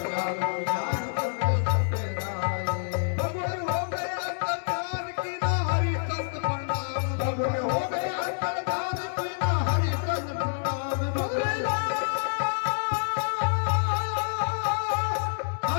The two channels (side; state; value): right; silent; digital silence